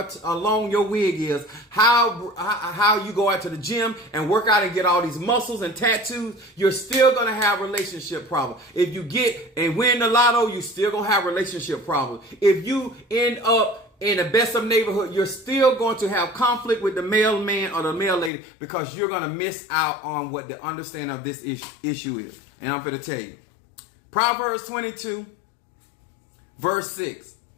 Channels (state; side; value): drops out; right; at 18.3 s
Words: or long your wig is, how you go out to the gym and work out and get all these muscles and tattoos, you're still going to have relationship problems. If you get and win the lotto, you're still going to have relationship problems. If you end up in the best of neighborhood, you're still going to have conflict with the male man or the male lady because you're going to miss out on what the understanding of this issue is. And I'm going to tell you. Proverbs 22, verse 6.